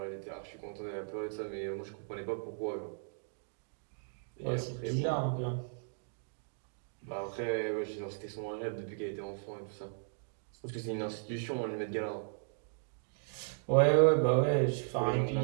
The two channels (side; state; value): left; silent; digital silence